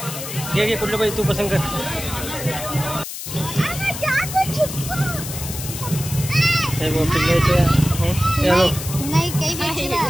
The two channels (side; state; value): left; noise; hiss, 8 dB below the sound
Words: घे कुठलं पाहिजे तू पसंत कर.